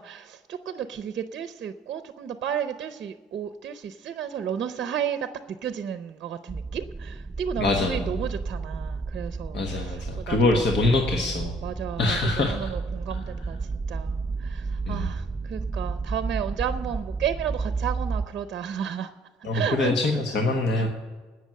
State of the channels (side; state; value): both; normal; correlation 0.59